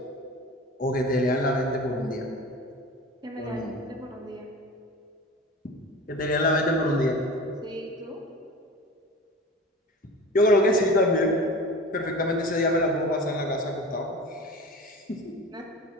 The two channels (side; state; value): both; normal; correlation 0.36